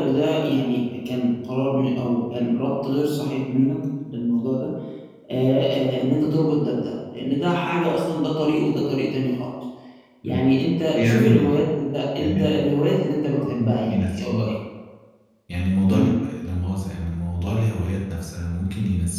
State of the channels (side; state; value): both; identical; correlation 1.00